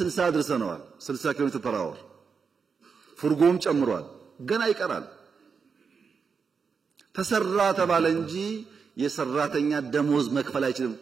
አድርሰነዋል 60 ኪሎ ሜትር ፐር አወር ፉርጎም ጨምሯል ገና ይቀራል ተሰራ ተባለ እንጂ የሰራተኛ ደሞዝ መክፈል አይችልም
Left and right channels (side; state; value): left; quieter; 5.6 dB